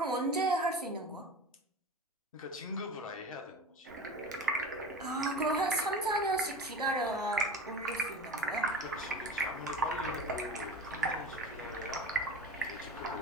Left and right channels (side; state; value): both; normal; correlation 0.33